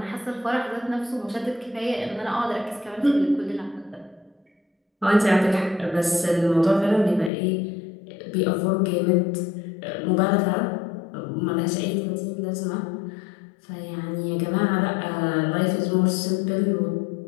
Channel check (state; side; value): drops out; right; at 7.3 s